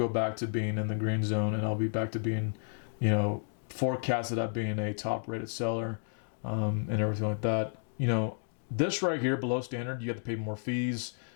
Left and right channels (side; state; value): right; silent; digital silence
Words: back to being in the green zone, and I'll be back to being, forecasted at being a top-rated seller, and everything like that. This right here below standard, you have to pay more fees.